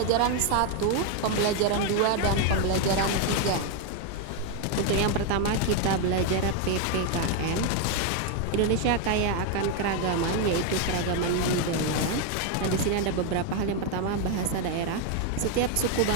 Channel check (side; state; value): both; different; correlation 0.01